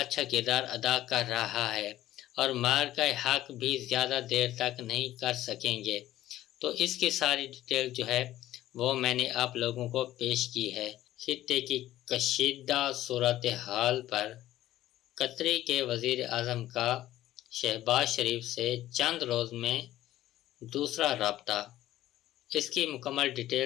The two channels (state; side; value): quieter; right; 14.2 dB